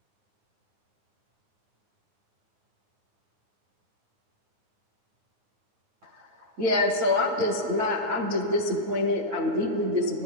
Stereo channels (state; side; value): late; left; 9.1 ms